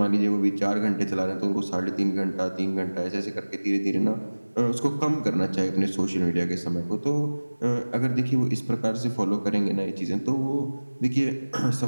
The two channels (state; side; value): inverted; both; correlation -1.00